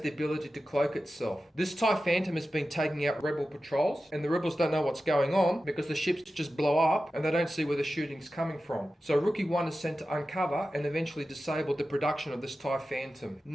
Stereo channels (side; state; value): both; normal; correlation 0.93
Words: the ability to cloak itself. This TIE Phantom has been taking out Rebel patrols, and the Rebels don't know what's going on because the ships just blow up and they don't see where the shooting's coming from. So Rookie 1 is sent to uncover and eventually disable the production of this TIE Phantom.